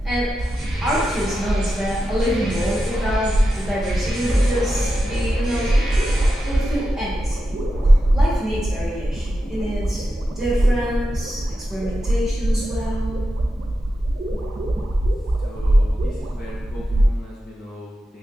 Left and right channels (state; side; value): normal; both; correlation 0.90